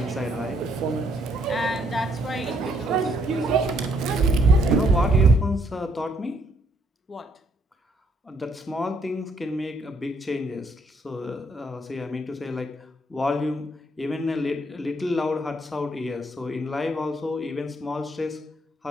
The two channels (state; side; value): normal; both; correlation 0.69